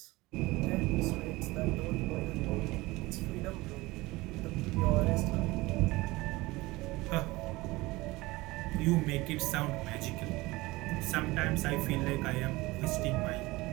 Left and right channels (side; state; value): left; quieter; 20.9 dB